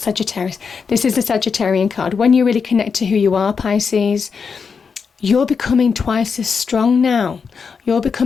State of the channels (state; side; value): quieter; right; 5.7 dB